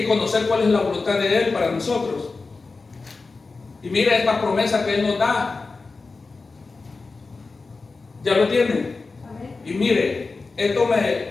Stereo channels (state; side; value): quieter; right; 4.0 dB